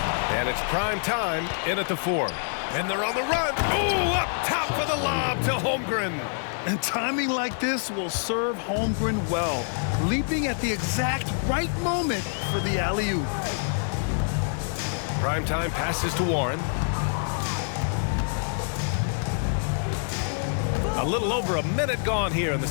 And it's prime time in at the 4. And they're on the run. Ooh, up top for the lob to Holmgren. And timing like this will serve Holmgren well, leaping at the exact right moment for the alley-oop. Prime time passes to Warren. A little over a minute gone here in the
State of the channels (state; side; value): silent; right; digital silence